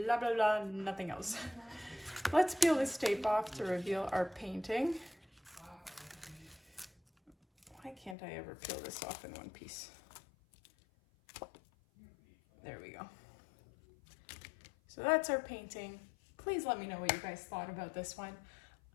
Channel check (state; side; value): drops out; right; at 8.2 s